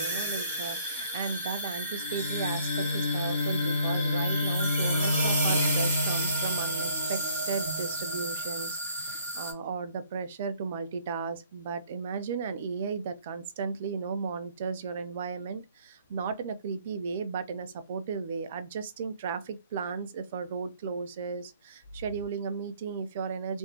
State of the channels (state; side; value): inverted; both; correlation -0.61